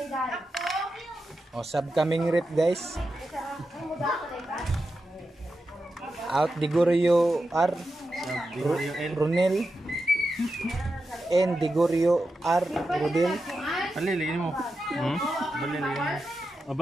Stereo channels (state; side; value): normal; both; correlation 0.89